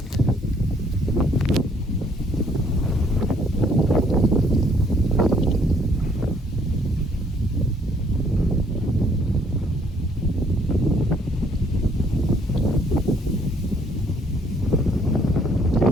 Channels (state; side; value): normal; both; correlation 0.64